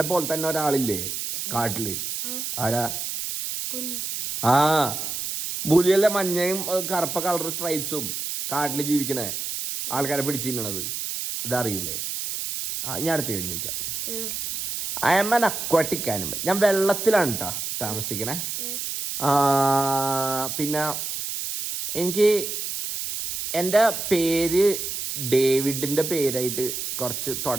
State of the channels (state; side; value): noise; right; hiss, 4 dB below the sound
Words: പോലെ തന്നെ ഒരാളില്ലേ കാട്ടില്? ആരാ? പുലിയല്ലേ, മഞ്ഞയും കറുപ്പ കളർ സ്ട്രൈപ്സും കാട്ടില് ജീവിക്കണേ ആൾക്കാരെ പിടിച്ചിരുന്നത്. അതറിയൂലേ? ഞാൻ അടുത്ത കാര്യം ചോദിക്കാം. I am an aquatic animal. ഞാൻ വെള്ളത്തിലാണ് കേട്ടോ താമസിക്കണേ. പിന്നെ എനിക്ക് എൻ്റെ പേര് ഡേവിഡിൻ്റെ പേരായിട്ട് കുറച്ച്